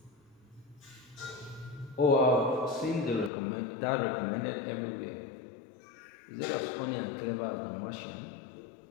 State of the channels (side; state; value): right; drops out; at 3.3 s